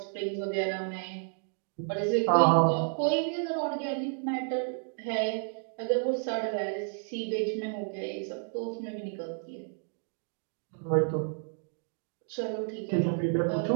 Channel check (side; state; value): left; silent; 57 dB below the other